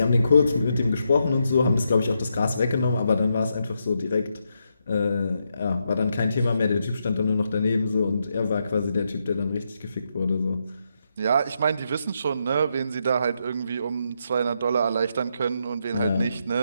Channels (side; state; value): both; inverted; correlation -0.81